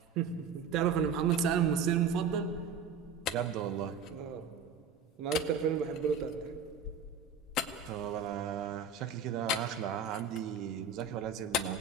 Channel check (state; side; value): quieter; left; 5.5 dB